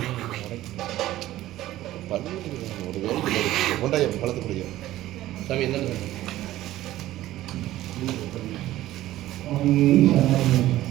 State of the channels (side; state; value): left; quieter; 15.0 dB